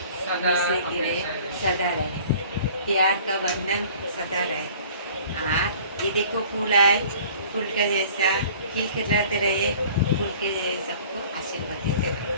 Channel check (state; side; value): inverted; both; correlation -0.49